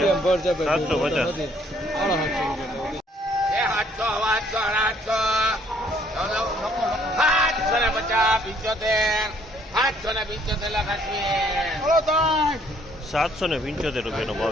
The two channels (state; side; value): normal; both; correlation 0.64